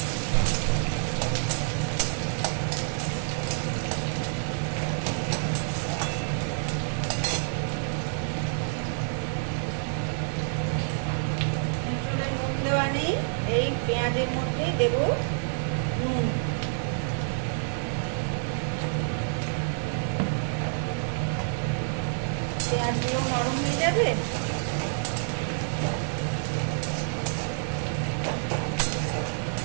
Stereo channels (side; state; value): left; silent; digital silence